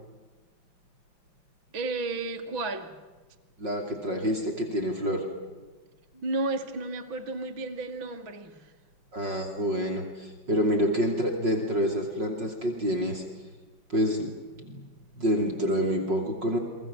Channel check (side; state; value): left; late; 5.5 ms